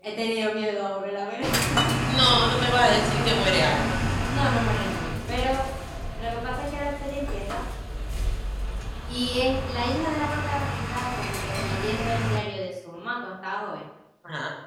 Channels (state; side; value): identical; both; correlation 1.00